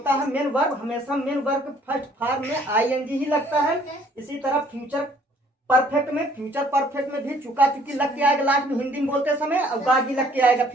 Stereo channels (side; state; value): both; normal; correlation 0.60